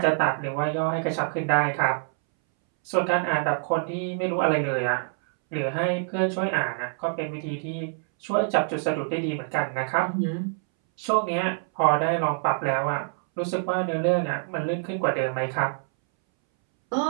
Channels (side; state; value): left; silent; 61 dB below the other